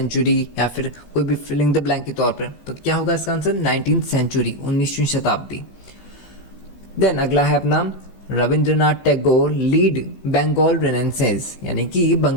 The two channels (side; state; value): right; late; 16 ms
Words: या फिर कोई भी फिलिंग द ब्लैंक के तौर पर, तो क्या होगा इसका आंसर, 19th सेंचुरी, 19वीं शताब्दी। देन अगला है अपना रविंद्रनाथ टैगोर लीड बंगाल रेनेसेंस, यानी कि